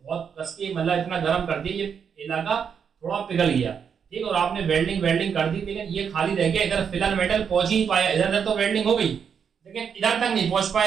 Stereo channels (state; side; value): quieter; left; 7.1 dB